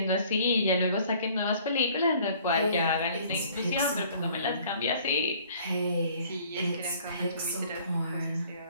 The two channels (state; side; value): inverted; both; correlation -0.55